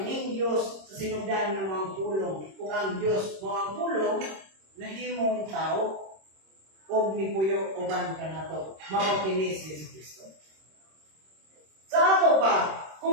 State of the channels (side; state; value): left; late; 26 ms